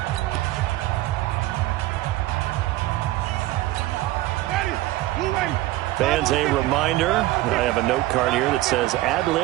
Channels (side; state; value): left; quieter; 16.9 dB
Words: Fans, a reminder, I have a note card here that says